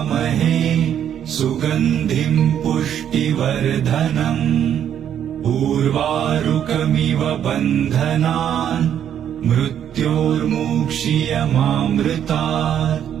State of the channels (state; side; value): quieter; left; 9.6 dB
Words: सुगन्धिं पुष्टिवर्धनम् उर्वारुकमिव बन्धनान् मृत्योर्मुक्षीयमामृतात्